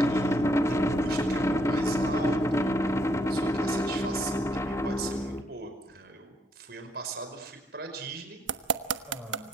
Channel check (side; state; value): both; normal; correlation 0.71